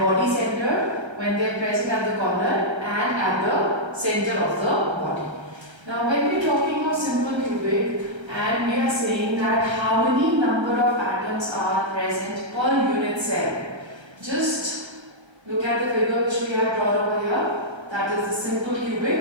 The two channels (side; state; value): left; late; 1.3 ms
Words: centered when they are present at the corner and at the center of the body. Now when we are talking of simple cubic and we are saying that how many number of atoms are present per unit cell, just look at the figure which we have drawn over here, that is the simple